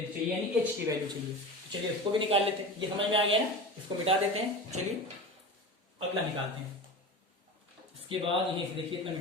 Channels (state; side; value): normal; both; correlation 0.30